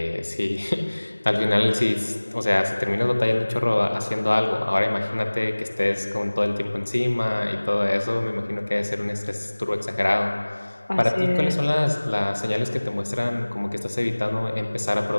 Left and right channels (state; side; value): inverted; both; correlation -1.00